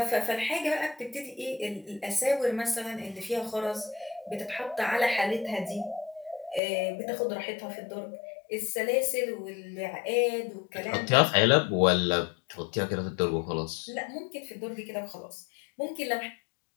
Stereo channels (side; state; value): right; drops out; at 6.6 s